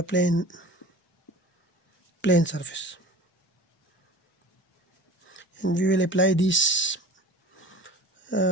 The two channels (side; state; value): both; normal; correlation 0.39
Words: plane surface. And we will apply these